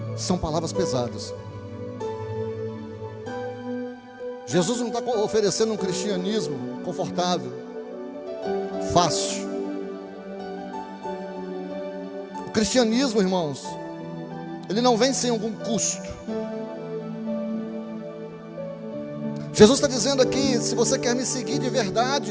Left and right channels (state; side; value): identical; both; correlation 1.00